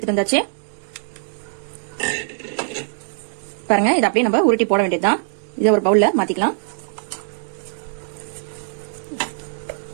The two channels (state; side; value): silent; left; digital silence